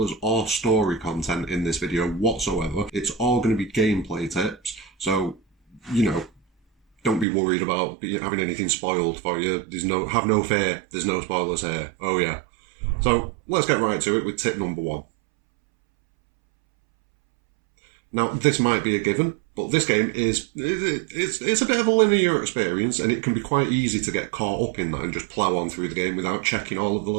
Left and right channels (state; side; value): drops out; left; at 7.2 s